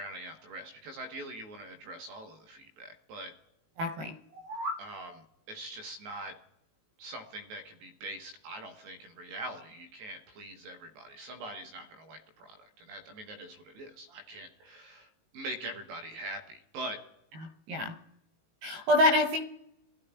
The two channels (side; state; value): left; late; 19 ms